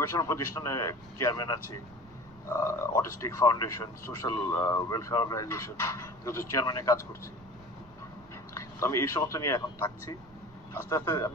প্রতিষ্ঠানে চেয়ারম্যান আছি, autistic foundation, social welfare organisation, চেয়ারম্যানে কাজ করছি। তো আমি এই সমস্ত নিয়ে এখন থাকছি। আস্তে আস্তে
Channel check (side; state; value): right; noise; rumble, 23 dB below the sound